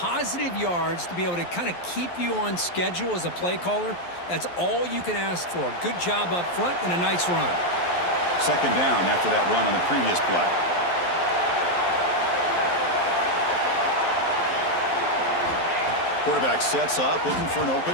yards to be able to kind of keep you on schedule as a play caller. That's all you can ask for. Good job up front and a nice run. 2nd down after that run on the previous play. Quarterback sets up, looking for an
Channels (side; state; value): right; late; 11 ms